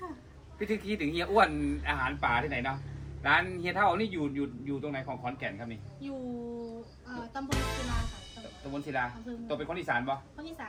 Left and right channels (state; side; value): identical; both; correlation 1.00